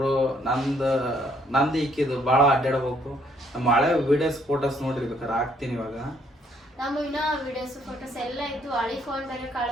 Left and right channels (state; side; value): normal; both; correlation 0.67